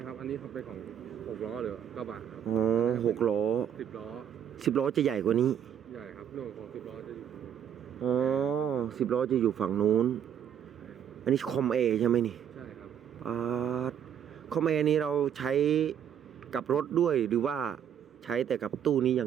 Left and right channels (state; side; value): quieter; left; 9.1 dB